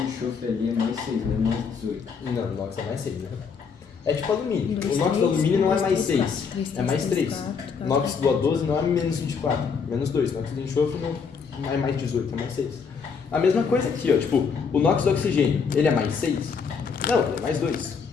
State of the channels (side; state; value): right; quieter; 5.9 dB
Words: ali é mais 6, né? Mais 18. Não, o NOx é mais 6, né? É tipo alumínio. Dois, O NOx do três, alumínio não é dois, mais três, 6, quatro, três, é mais 3. quatro, O NOx do A12 não é menos 24, menos 2. O NOx do enxofre não é mais 18, é mais 6. A mesma coisa aqui, ó. Tipo, o NOx do oxigênio, ele é mais 6? Não, ele é mais 2.